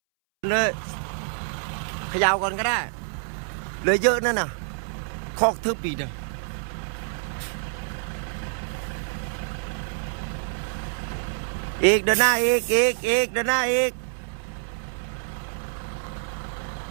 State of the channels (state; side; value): silent; left; 60 dB below the other